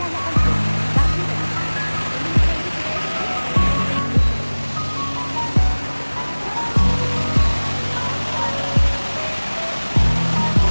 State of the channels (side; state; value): both; inverted; correlation -1.00